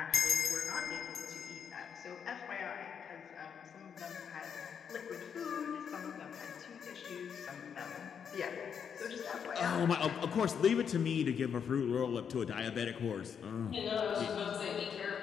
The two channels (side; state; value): right; quieter; 7.4 dB